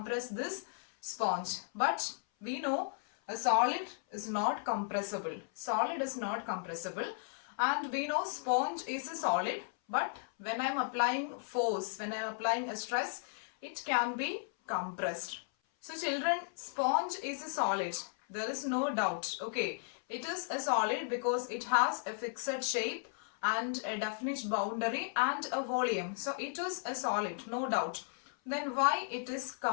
this sponge. But we know a solid is not compressible. Solid is not compressible, and we know sponge is a solid. But when I am applying force, when I am applying a stress, it can be compressed. So children, sponge is a solid. There is no doubt. Okay, it is a solid because it has a fixed shape and a definite boundary and a volume. So it is a solid, no doubt. Then why it is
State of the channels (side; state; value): right; silent; 54 dB below the other